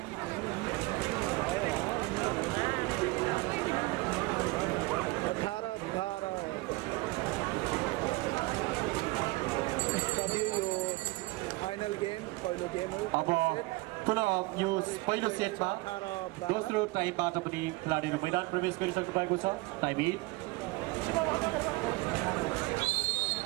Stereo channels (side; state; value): left; quieter; 22.8 dB